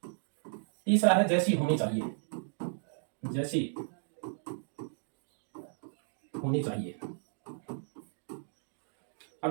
तीसरा है जैसी होनी चाहिए, जैसी होनी चाहिए। अब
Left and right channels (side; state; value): left; silent; digital silence